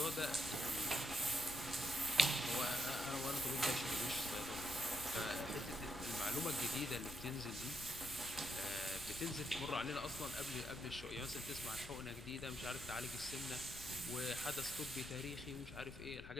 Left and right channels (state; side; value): noise; left; rumble, 13 dB below the sound